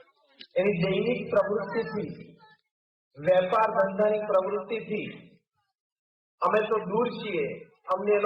એની દૈનિક પ્રવૃત્તિથી, વેપાર ધંધાની પ્રવૃત્તિથી અમે તો દૂર છીએ, અમને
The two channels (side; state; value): both; identical; correlation 1.00